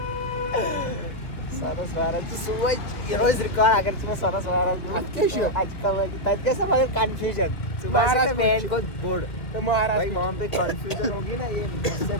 सोनस महाराज सुबह रोज रिकॉर्ड आकर तुम्हें सोनस महाराज आज का तब कैसा मगर कंफ्यूजन सुबह से मैन को बोर्ड तो महाराज भाई वहाँ पे कंफ्यूजन होगी ना। ये इससे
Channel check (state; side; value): late; right; 2.2 ms